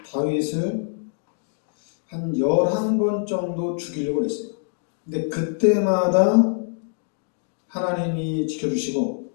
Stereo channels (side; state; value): right; silent; 62 dB below the other